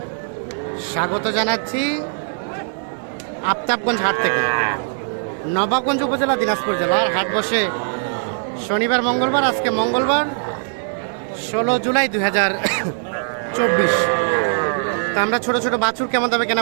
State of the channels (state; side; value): silent; left; digital silence